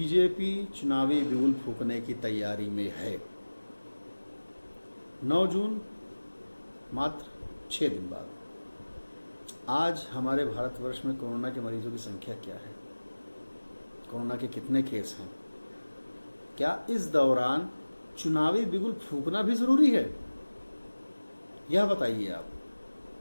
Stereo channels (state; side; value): inverted; both; correlation -1.00